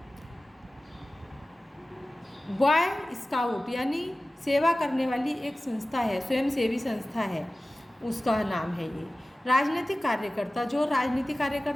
बॉय स्काउट यानी सेवा करने वाली एक संस्था है, स्वयंसेवी संस्था है, उसका नाम है ये। राजनीतिक कार्यकर्ता, जो राजनीतिक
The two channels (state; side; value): normal; both; correlation 0.96